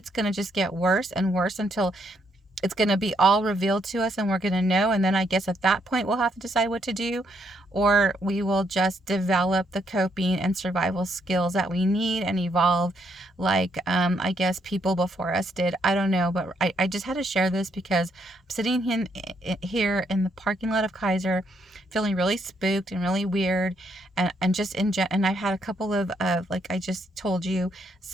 going to just get worse and worse until it's going to be all revealed to us and we're going to know, and then I guess at that point we'll have to decide what to do, or we will just develop the coping and survival skills that we need and evolve like I guess people before us did. I don't know, but I just had to share this because I'm sitting here in the parking lot of Kaiser feeling really spooked and really weird, and just and I've had a couple of like I just told you,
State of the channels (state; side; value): normal; both; correlation 0.74